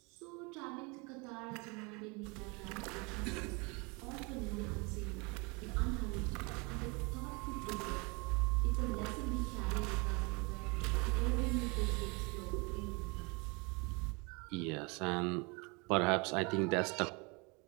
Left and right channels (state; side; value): quieter; left; 29.4 dB